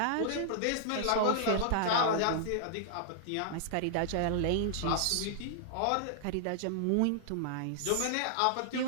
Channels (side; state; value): both; different; correlation -0.01